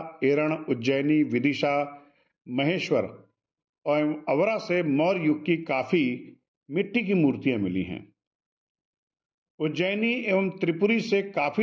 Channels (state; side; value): identical; both; correlation 1.00